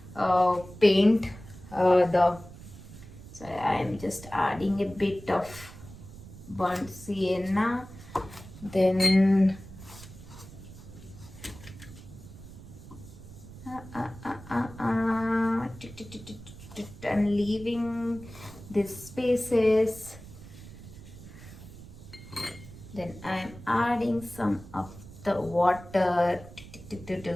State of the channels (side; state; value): right; noise; rumble, 16 dB below the sound